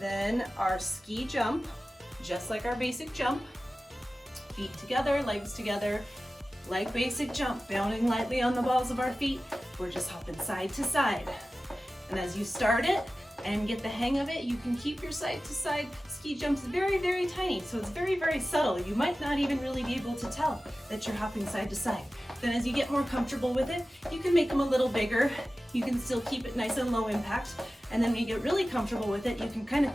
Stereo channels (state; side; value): normal; both; correlation 0.95